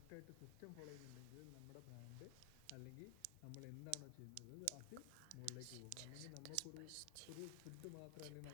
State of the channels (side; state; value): both; different; correlation 0.00